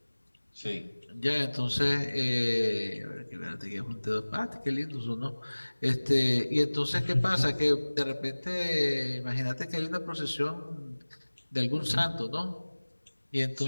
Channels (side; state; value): both; inverted; correlation -1.00